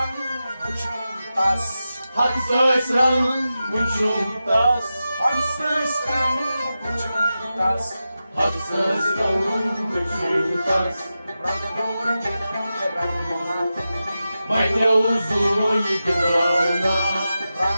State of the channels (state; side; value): inverted; both; correlation -0.92